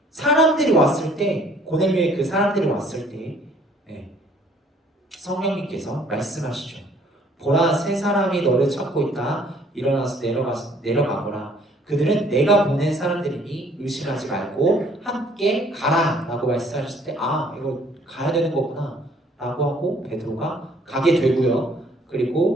사람들이 왔을 때 고넬료의 그 사람들이 왔을 때 성령님께서 말씀하시죠. 보라 세 사람이 너를 찾고 있다. 일어나서 내려가거라. 그들은 내가 보낸 사람들이니 의심하지 말고 함께 가라 라고 말씀하셨을 때 이거 가야 되는 거구나 라고 하고 베드로가 가게 되고요.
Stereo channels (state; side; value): normal; both; correlation 0.59